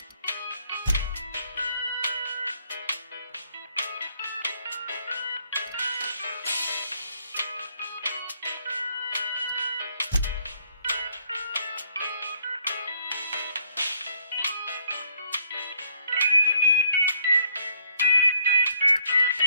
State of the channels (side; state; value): both; inverted; correlation -0.66